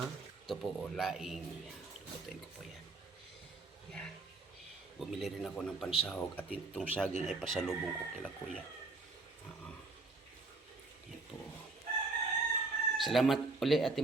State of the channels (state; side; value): quieter; left; 3.5 dB